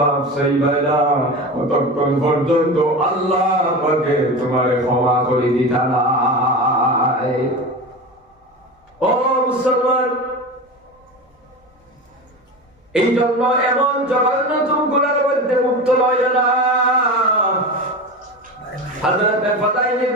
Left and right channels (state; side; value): normal; both; correlation 0.27